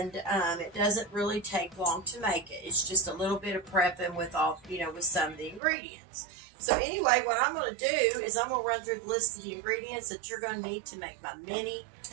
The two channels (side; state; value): left; drops out; at 5.6 s